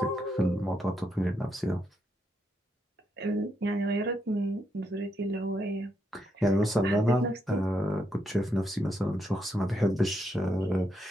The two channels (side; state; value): both; normal; correlation 0.79